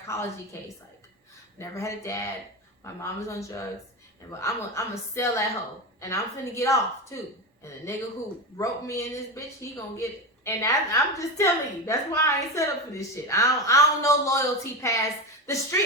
case. Like, never had a dad. My mom was on drugs, and I'm gonna sell that hoe, and I'm finna get off too. And the nigga who roped me in this bitch, he gonna get it. And I'm just telling you, that's why I ain't set up for this shit. I don't know loyalty past the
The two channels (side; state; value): both; normal; correlation 0.18